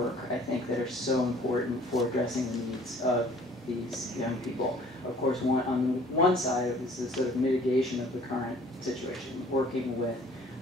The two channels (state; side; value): normal; both; correlation 0.54